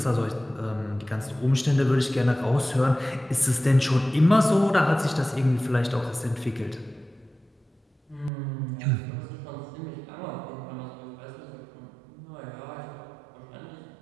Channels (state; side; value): drops out; left; at 8.3 s